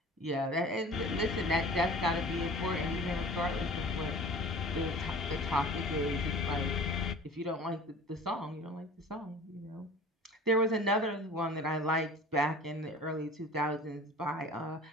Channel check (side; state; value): both; normal; correlation 0.42